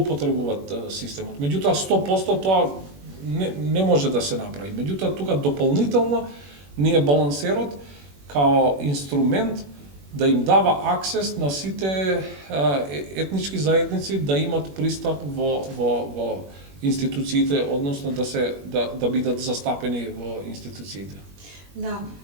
системот. Меѓутоа 100% тоа не може да се направи. Меѓутоа тука дополнително ние балансерот као инструмент да им дава аксес на сите етнички заедници да имат пристап во институциите, односно да бидат застапени во институциите. Да,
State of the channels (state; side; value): late; left; 21 ms